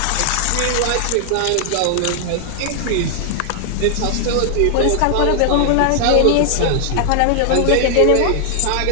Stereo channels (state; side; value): different; both; correlation 0.00